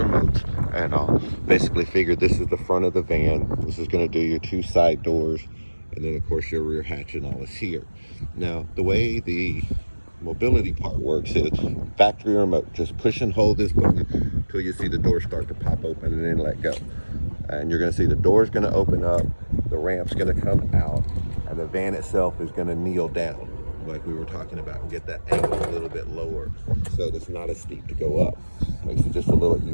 And I'll basically figured this is the front of the van. This is going to do your two side doors, and then of course your rear hatch and all is here. Now the way the mobility part works is factory remote. Just push and hold this button until you see the door start to pop open and then let go. And you're going to see the door's going to open up, the ramp's going to come out, and the van itself is going to kneel down like we were talking about and get that angle a little bit lower so it's not as steep to go up. Makes it just a little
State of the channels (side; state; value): both; inverted; correlation -1.00